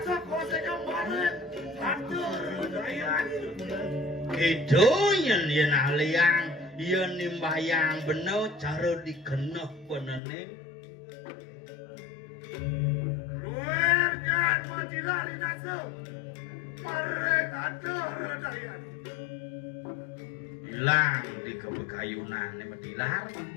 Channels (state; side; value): drops out; right; at 10.2 s